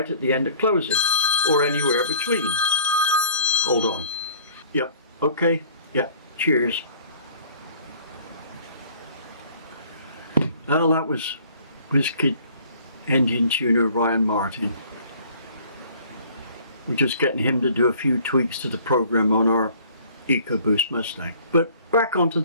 at the end of closing, or anywhere between. Hold on. Yep. Okay. Yep. Cheers. Well, that was WizKid engine tuner Ryan Martin. We're just getting him to do a few tweaks to the program on our EcoBoost Mustang. But back onto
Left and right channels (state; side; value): inverted; both; correlation -0.53